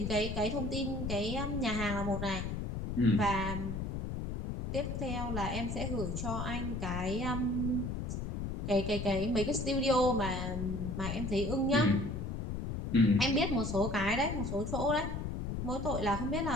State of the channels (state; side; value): noise; left; rumble, 4 dB below the sound